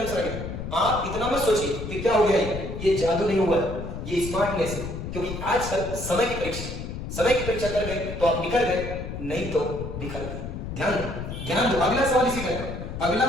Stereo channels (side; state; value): left; noise; rumble, 7 dB below the sound